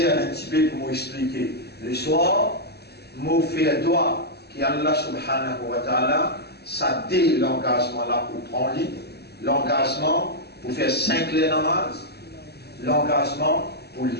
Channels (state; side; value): late; right; 0.47 ms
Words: un petit peu pour m'expliquer. Le soir, je fais un doigt qui Allah subhanahu wa ta'ala, ça dit l'engagement là pour prendre lit, l'engagement pour faire 5 les namaz, l'engagement pour